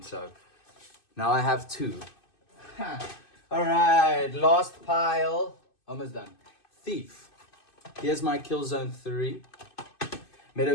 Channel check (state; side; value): late; right; 2.5 ms